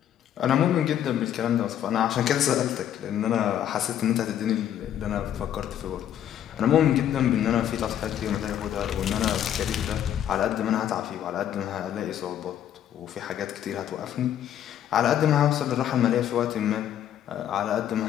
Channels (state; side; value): quieter; right; 10.5 dB